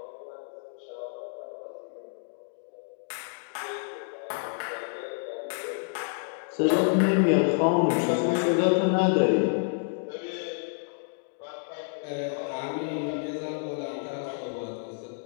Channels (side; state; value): right; silent; digital silence